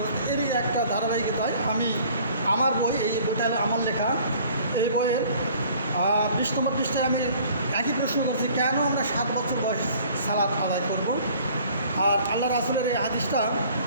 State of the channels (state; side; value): inverted; both; correlation -0.53